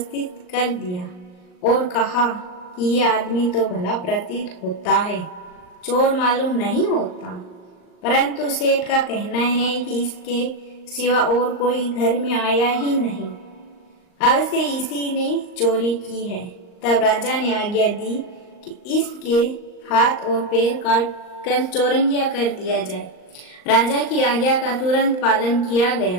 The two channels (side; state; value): right; late; 39 ms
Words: कर दिया और कहा कि ये आदमी तो भला प्रतीत होता है, चोर मालूम नहीं होता, परंतु सेठ का कहना है कि इसके सिवा और कोई घर में आया ही नहीं, अवश्य इसी ने चोरी की है। तब राजा ने आज्ञा दी कि इसके हाथ और पैर काट कर चौरंगिया कर दिया जाए। राजा की आज्ञा का तुरंत पालन किया